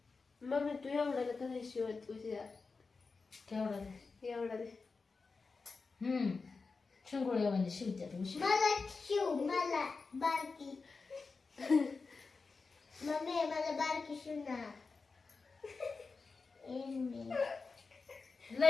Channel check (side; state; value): right; quieter; 4.4 dB